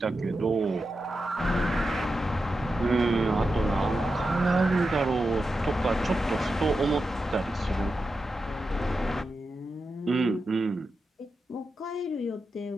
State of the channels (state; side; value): normal; both; correlation 0.89